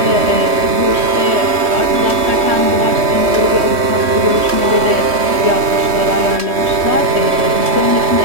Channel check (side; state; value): left; late; 3.2 ms